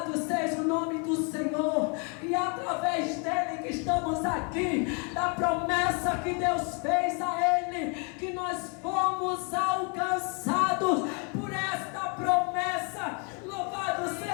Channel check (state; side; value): quieter; right; 35.8 dB